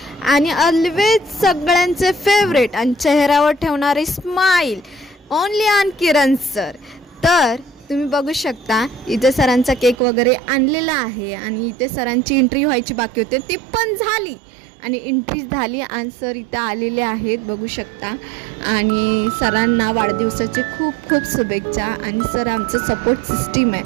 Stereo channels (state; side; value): drops out; left; at 10.0 s